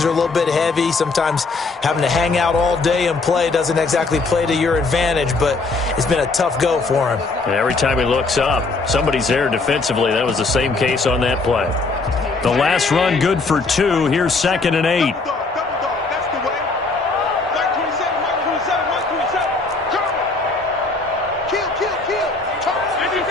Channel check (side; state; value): right; quieter; 3.8 dB